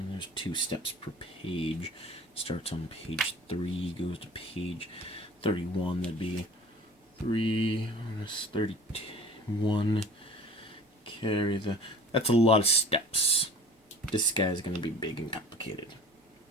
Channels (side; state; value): both; normal; correlation 0.44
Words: there's 2 steps per page. Starts on page 3, goes to page 31. That'd be 3 minus 31. Carry the... That's a lot of steps. This guy's going to be big and complicated.